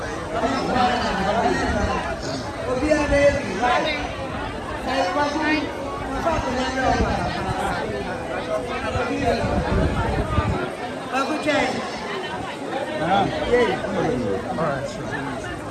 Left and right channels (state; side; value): identical; both; correlation 1.00